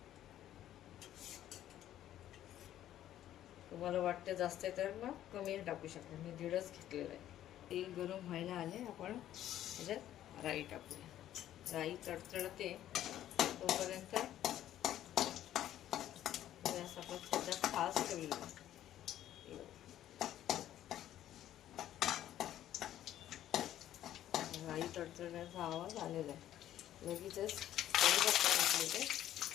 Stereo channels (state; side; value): quieter; right; 12.2 dB